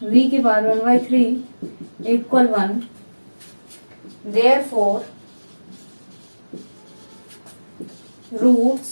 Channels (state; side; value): inverted; both; correlation -1.00